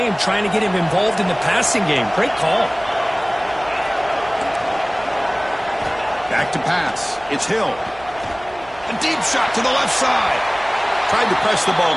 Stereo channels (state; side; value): noise; right; hum, 22 dB below the sound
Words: trying to get him involved in the passing game. Great call. Back to pass. It's Hill. A deep shot to the left side. Tried to press the ball